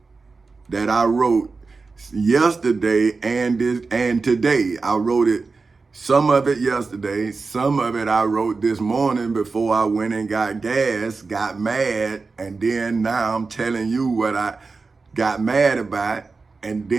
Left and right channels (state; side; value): quieter; left; 4.2 dB